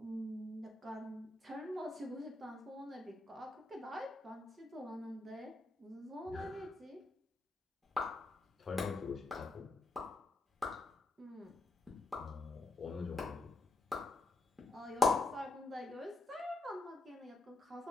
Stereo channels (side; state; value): right; quieter; 3.0 dB